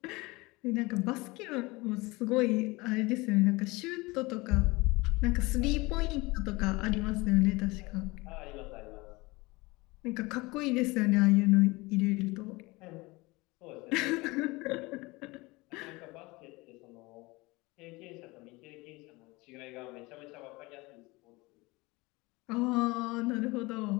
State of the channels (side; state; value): right; quieter; 23.2 dB